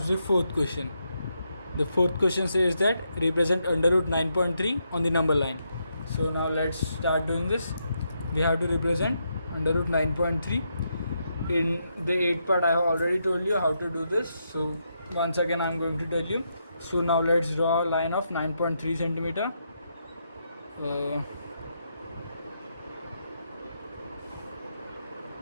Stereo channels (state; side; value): inverted; both; correlation -0.81